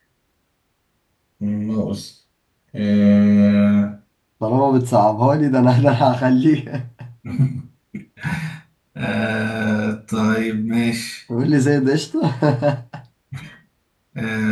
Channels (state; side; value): identical; both; correlation 1.00